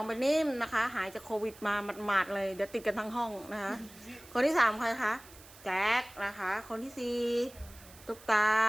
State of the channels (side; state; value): right; noise; hiss, 21 dB below the sound